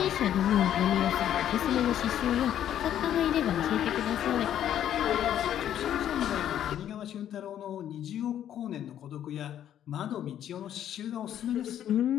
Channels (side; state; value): right; quieter; 10.7 dB